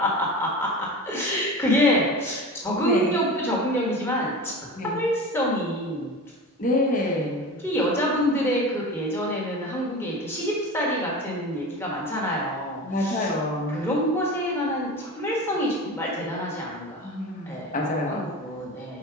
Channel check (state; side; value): normal; both; correlation 0.31